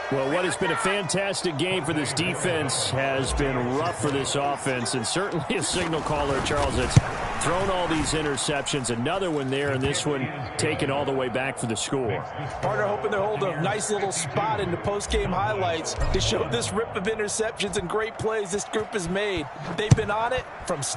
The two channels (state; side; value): identical; both; correlation 1.00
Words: Well, what has been a fantastic game for this defense has been rough for this offense, and certainly a signal caller, Charles, that's thrown all these interceptions. Another one there, and this one taken all the way back for the score. Partner hoping to hold a nice little spot in the post-game highlights to show this rip of interceptions and great plays this group has made. They've been on it from